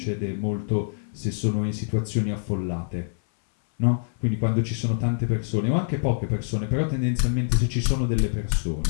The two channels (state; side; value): silent; right; 58 dB below the other